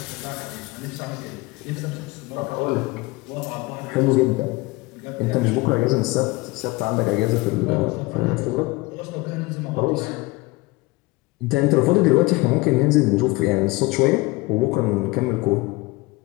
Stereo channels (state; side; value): quieter; right; 22.8 dB